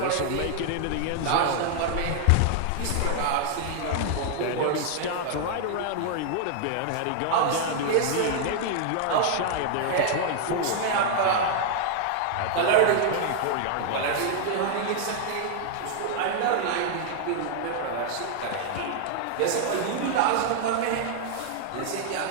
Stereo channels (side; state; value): both; different; correlation 0.00